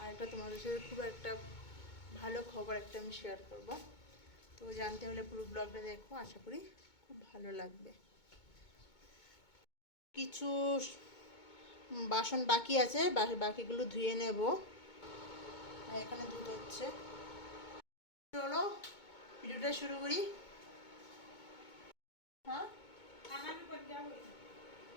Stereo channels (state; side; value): late; right; 2.2 ms